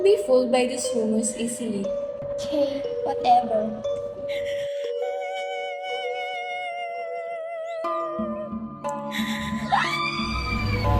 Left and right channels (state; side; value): identical; both; correlation 1.00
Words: be fooled by these rumors easily. Okay, whatever.